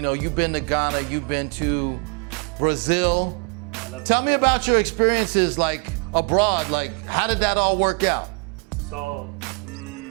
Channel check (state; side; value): quieter; left; 33.7 dB